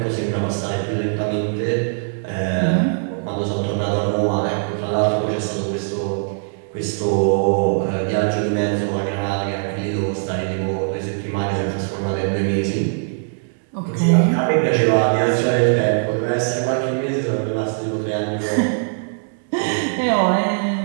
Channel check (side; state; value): left; silent; digital silence